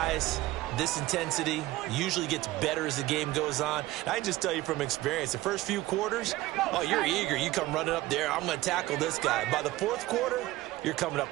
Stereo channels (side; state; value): left; quieter; 17.5 dB